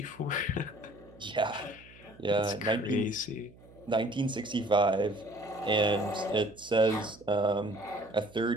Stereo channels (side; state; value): right; noise; hum, 24 dB below the sound